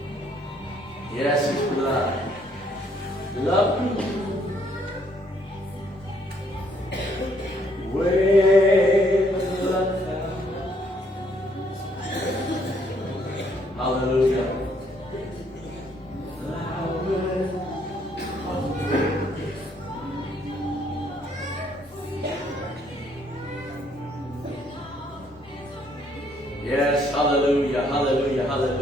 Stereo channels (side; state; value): both; normal; correlation 0.67